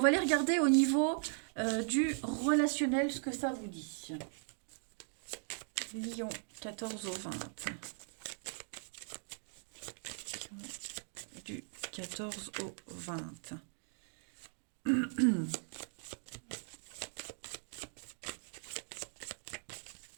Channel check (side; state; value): left; silent; 52 dB below the other